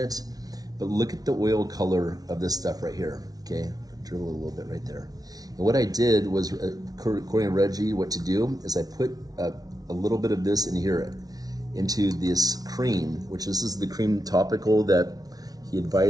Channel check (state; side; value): late; left; 0.18 ms